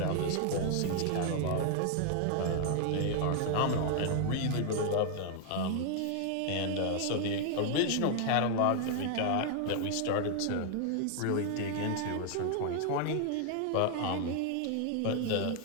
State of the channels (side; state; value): both; different; correlation 0.00